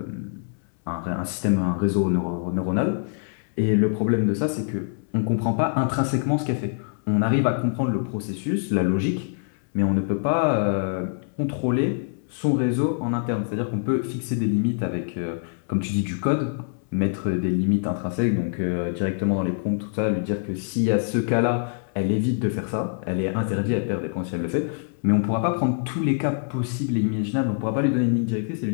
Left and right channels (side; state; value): right; silent; 62 dB below the other